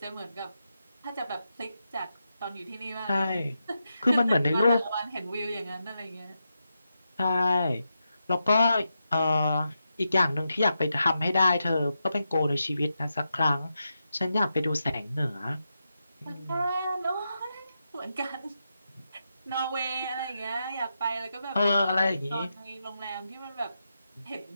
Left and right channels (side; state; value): both; inverted; correlation -0.87